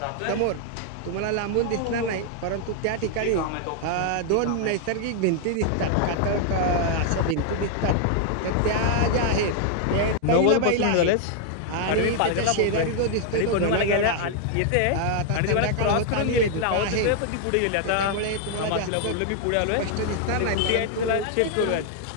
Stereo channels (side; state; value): both; different; correlation 0.00